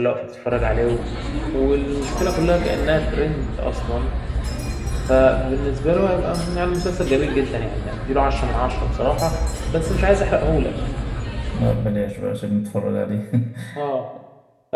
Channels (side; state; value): both; identical; correlation 1.00